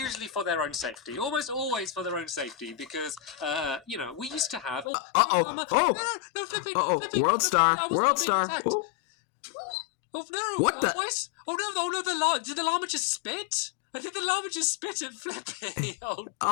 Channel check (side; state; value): right; drops out; at 4.9 s